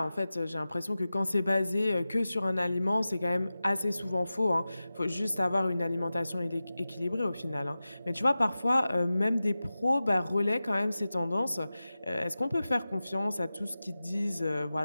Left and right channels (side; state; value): both; inverted; correlation -0.95